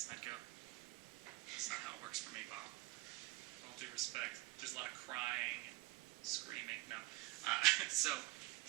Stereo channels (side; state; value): left; quieter; 20.4 dB